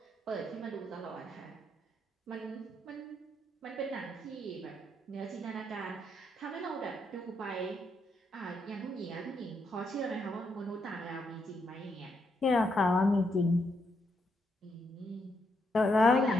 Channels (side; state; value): both; normal; correlation 0.79